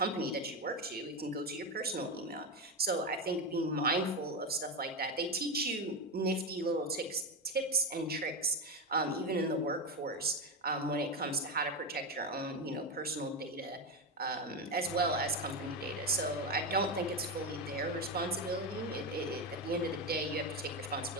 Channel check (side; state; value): both; normal; correlation 0.12